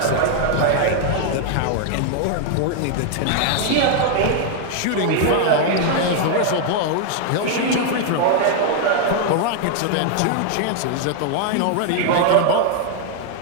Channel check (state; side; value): different; both; correlation 0.00